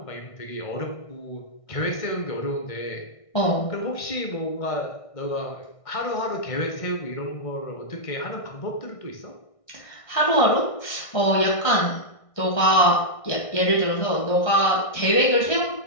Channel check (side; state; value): right; late; 1.6 ms